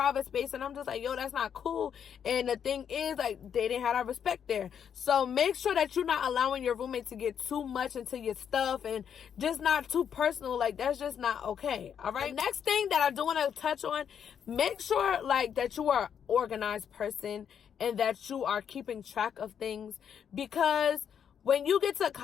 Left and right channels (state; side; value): quieter; right; 8.1 dB